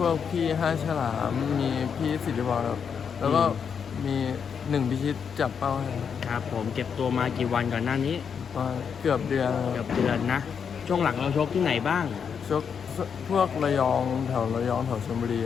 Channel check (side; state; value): right; quieter; 6.9 dB